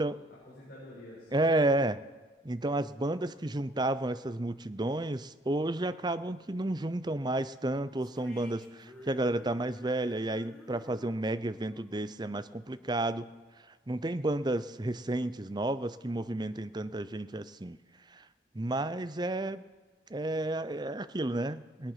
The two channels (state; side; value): normal; both; correlation 0.65